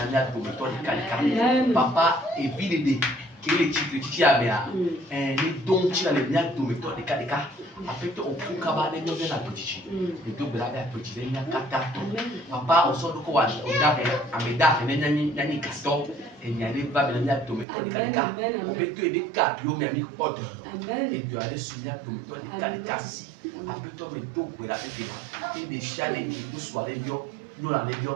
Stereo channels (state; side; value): drops out; left; at 17.7 s